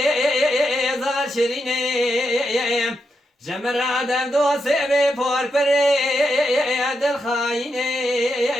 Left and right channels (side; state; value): both; normal; correlation 0.84